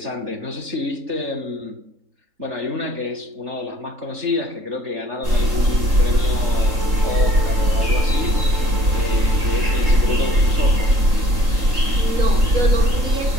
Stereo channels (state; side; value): late; left; 3.7 ms